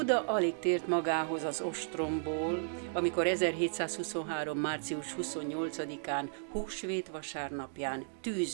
alig tért magához az ostromból, amikor 1723. március 28-án, húsvét vasárnapján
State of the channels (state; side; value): silent; left; digital silence